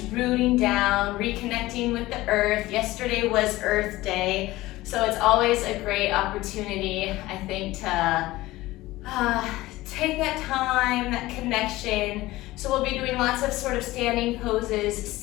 rooting down, reconnecting with the earth. Yesterday was Earth Day, so it's always a great opportunity, I think, to take that time, that connection. So we'll be doing lots of sort of standing poses,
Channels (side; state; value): right; quieter; 18.1 dB